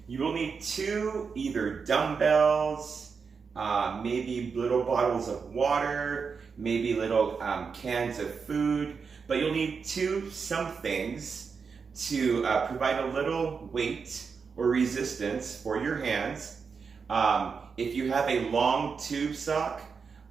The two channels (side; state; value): left; quieter; 5.5 dB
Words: You will need two either dumbbells, maybe little bottles of water, maybe little cans of food, but you'll need some things to provide a little weight or resistance for your hands. If you have a long tube sock,